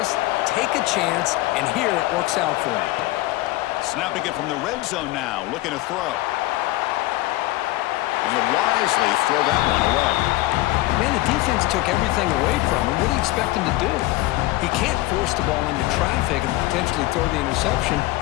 Take a chance, and here it works out for them. Snapping it from the red zone now, looking to throw. And he'll wisely throw that one away. Man, the defense took everything away from him. What do you expect him to do? He can't force the ball into traffic and potentially throw the interception.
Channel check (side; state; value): right; quieter; 18.3 dB